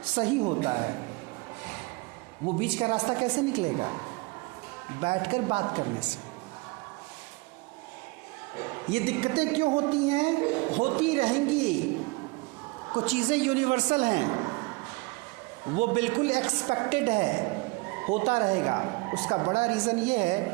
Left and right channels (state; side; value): quieter; left; 25.9 dB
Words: सही होता है। वो बीच का रास्ता कैसे निकलेगा? बैठकर बात करने से। ये दिक्कतें क्यों होती हैं? होती रहेंगी। कुछ चीज़ें यूनिवर्सल हैं, वो बिल्कुल एक्सपेक्टेड है, होता रहेगा। उसका बड़ा रीज़न ये